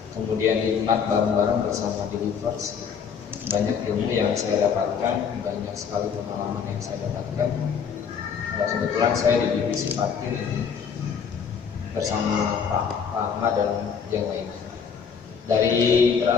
Kemudian nikmat bareng-bareng bersama di Gibas. Banyak ilmu yang saya dapatkan, banyak sekali pengalaman yang saya dapatkan. Kebetulan saya di divisi parkir bersama Pak Ahmad dan yang lainnya. Dari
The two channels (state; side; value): quieter; right; 6.8 dB